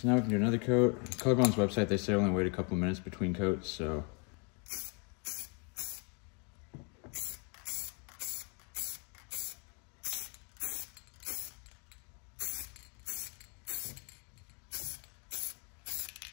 now we can do another coat. Colorbond's website, they say only wait a couple of minutes between coats, so.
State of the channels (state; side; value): quieter; right; 34.8 dB